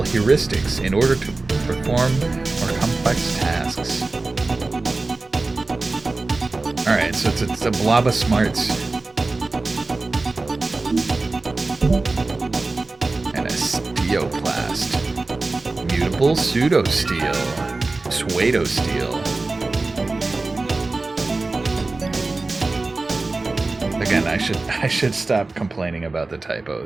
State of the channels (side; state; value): left; quieter; 3.4 dB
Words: heuristics in order to perform more complex tasks. Alright, so it's a blob of smarts. And a steoplast. Mutable pseudo-steel. Pseudo-steel. Again, I should stop complaining about the